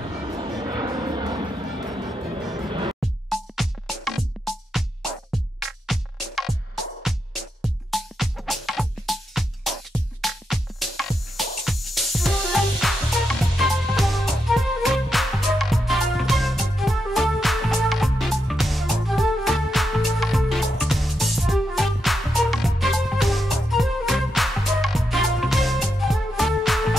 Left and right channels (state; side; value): normal; both; correlation 0.84